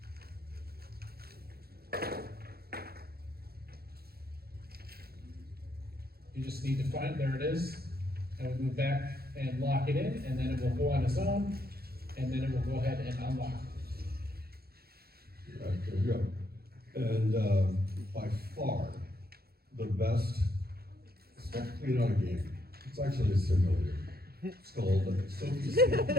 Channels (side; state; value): left; late; 0.45 ms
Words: You just need to find, there it is, and we move back and lock it in, and then it will go on its own, and then it will go ahead and unlock. Right, there you go. And by far, the best spectacle on a game, it's actually a simulator. It's called Sophie